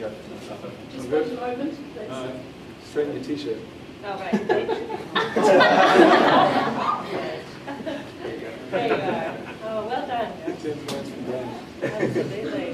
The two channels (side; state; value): both; identical; correlation 1.00